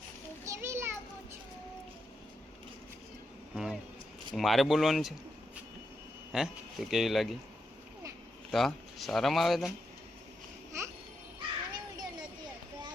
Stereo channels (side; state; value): both; normal; correlation 0.84